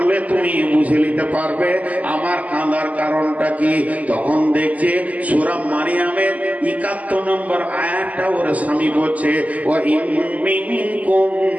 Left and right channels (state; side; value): late; left; 0.074 ms